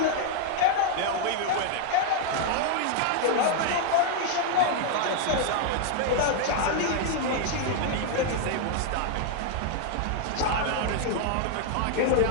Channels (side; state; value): both; different; correlation 0.00